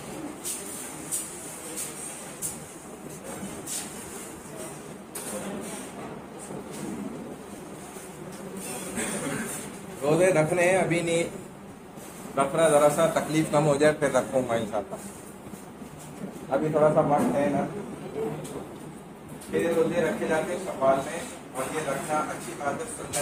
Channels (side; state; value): both; identical; correlation 1.00